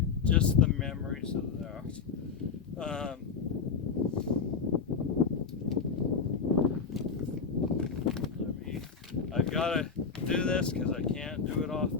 just the memories of that. I've got to do this because I can't do it off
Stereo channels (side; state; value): right; quieter; 5.8 dB